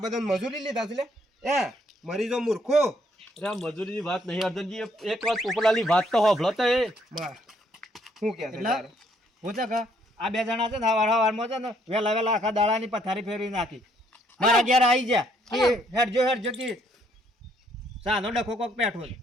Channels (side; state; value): both; normal; correlation 0.68